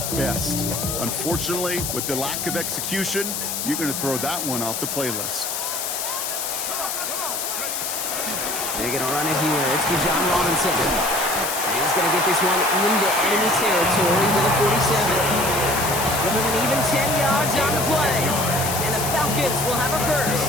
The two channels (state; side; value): noise; left; hiss, 3 dB below the sound